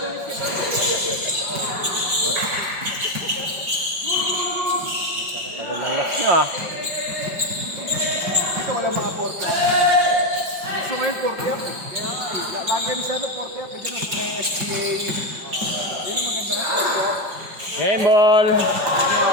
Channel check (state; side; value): late; left; 5.3 ms